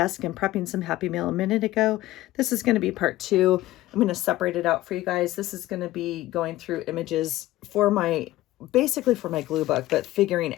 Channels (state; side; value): quieter; right; 16.4 dB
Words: and prepping some Happy Meal a minute ago. This is going to be part two. I'm going to separate it out for you guys. This is going to be going through images for basically for my glue book, but figuring